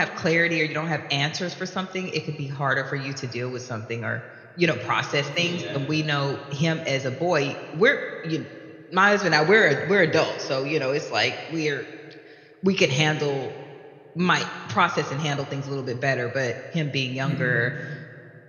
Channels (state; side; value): identical; both; correlation 1.00